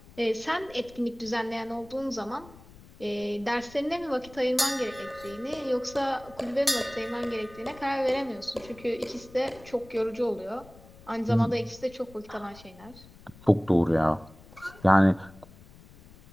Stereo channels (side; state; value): left; noise; rumble, 22 dB below the sound